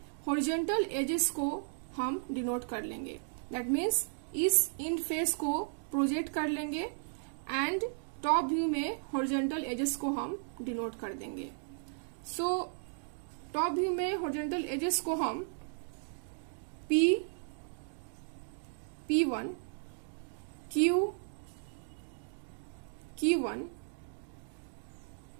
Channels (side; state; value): left; silent; digital silence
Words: हॉरिजॉन्टल एजेस को हम डिनोट कर लेंगे, दैट मीन्स इस इंड फेस को प्रोजेक्ट कर लेंगे एंड टॉप व्यू में हॉरिजॉन्टल एजेस को हम डिनोट कर देंगे। सो टॉप व्यू में हॉरिजॉन्टल एजेस को हम P1 Q1